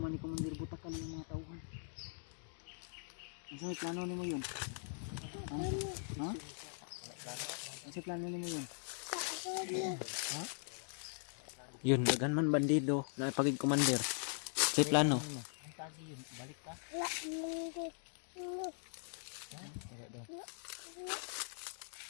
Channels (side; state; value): right; silent; digital silence